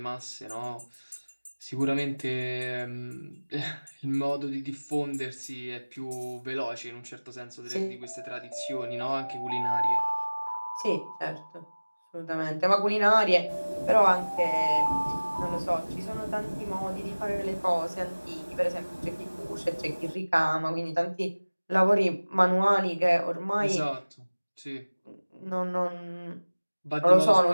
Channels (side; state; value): both; inverted; correlation -1.00